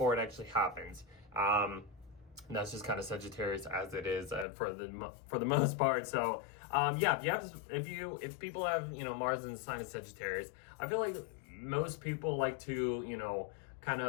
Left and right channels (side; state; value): right; drops out; at 4.5 s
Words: it actually happens. And that's just kind of Sagittarius as it is for the most part. So if people have Mars in the sign of Sagittarius, I feel like most people like to kind